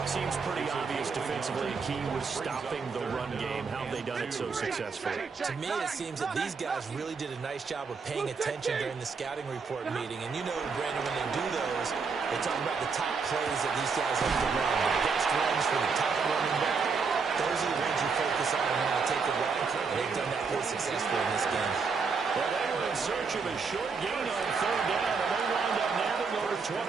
Seems pretty obvious defensively. Key was stopping the run game. How have they done it so successfully? To me, it seems that these guys really did a nice job of paying attention during the scouting report meeting. And you know, Brandon, when they do those, they talk about the top plays that these guys have to run. The best runs for the top running back. Those are the ones you focus on and how to take away. And they've done that pretty successfully in this game. Well, they were in search of a short gain on 3rd down, and they wound up nabbing over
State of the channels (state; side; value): quieter; left; 5.1 dB